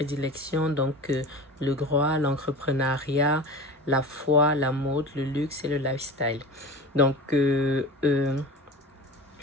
donc le droit, l'entrepreneuriat, la foi, la mode, le luxe et le lifestyle. Donc,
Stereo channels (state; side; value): normal; both; correlation 0.33